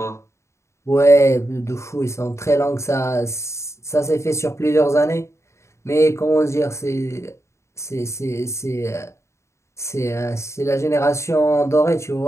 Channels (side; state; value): right; late; 0.14 ms